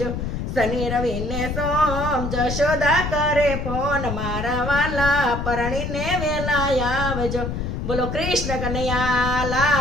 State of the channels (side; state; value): left; noise; rumble, 4 dB below the sound